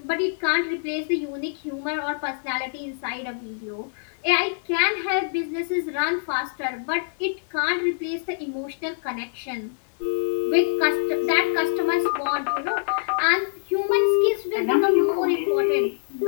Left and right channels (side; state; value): right; silent; digital silence